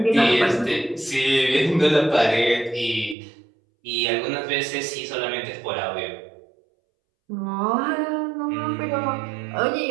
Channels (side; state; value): left; drops out; at 3.2 s